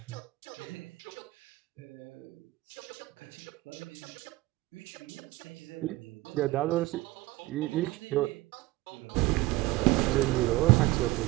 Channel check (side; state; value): left; quieter; 19.6 dB